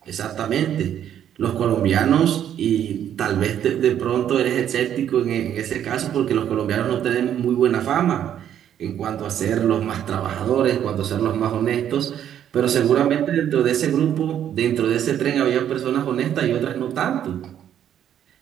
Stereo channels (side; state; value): left; quieter; 10.1 dB